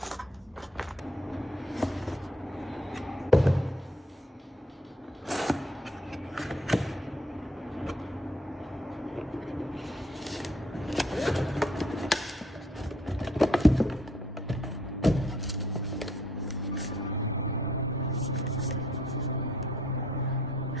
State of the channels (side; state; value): both; normal; correlation 0.64